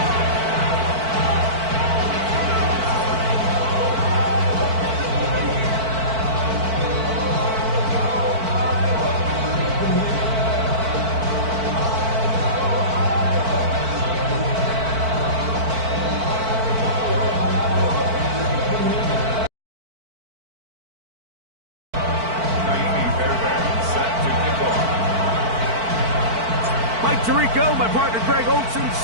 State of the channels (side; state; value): left; late; 4.5 ms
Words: Tirico, my partner Greg Olson,